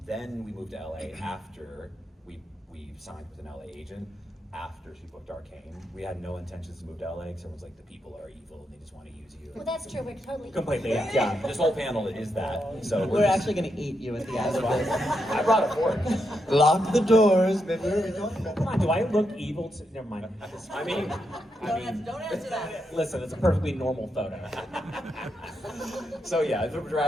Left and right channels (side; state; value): both; normal; correlation 0.83